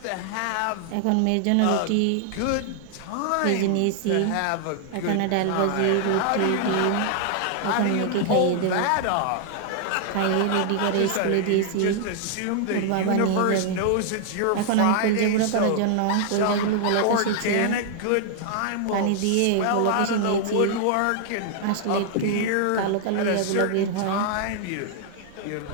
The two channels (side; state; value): both; different; correlation 0.00